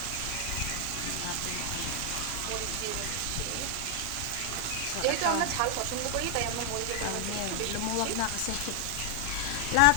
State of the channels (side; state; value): both; different; correlation 0.00